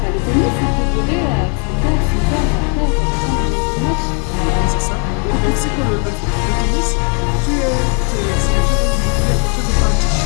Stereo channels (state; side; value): quieter; right; 39.0 dB